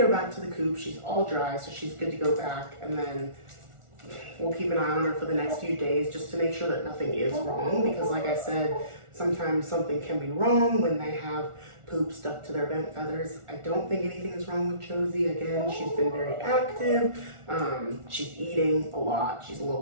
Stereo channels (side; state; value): left; late; 1.4 ms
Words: back to the coop. She's all dry, so she's good to go back. And then we'll keep an eye on her for the next few days just to make sure that nothing is wrong. Because like I said, sometimes something can be wrong when they have poop stuck to their vent feathers. I don't think anything is wrong with Josie. Again, she's been very active. She's eating a lot. She's a little